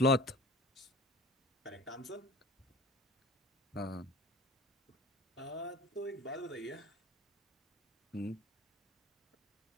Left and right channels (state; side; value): normal; both; correlation 0.39